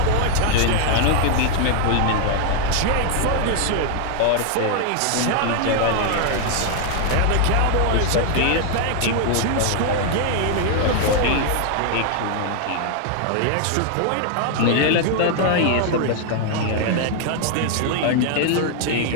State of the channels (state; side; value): different; both; correlation 0.00